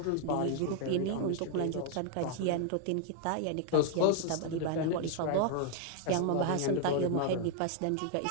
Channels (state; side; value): different; both; correlation 0.00